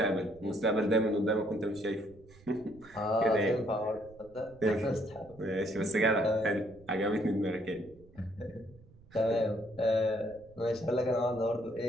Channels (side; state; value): right; noise; rumble, 24 dB below the sound